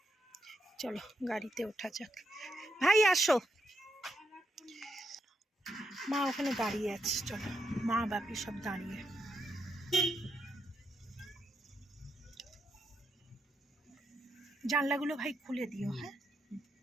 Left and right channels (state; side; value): normal; both; correlation 0.80